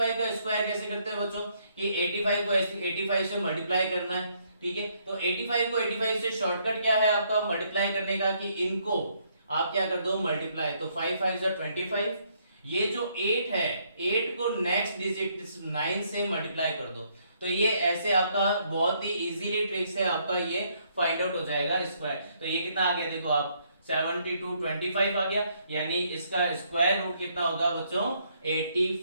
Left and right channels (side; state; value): both; inverted; correlation -0.70